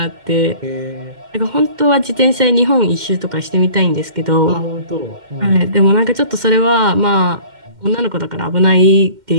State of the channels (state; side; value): late; left; 2.1 ms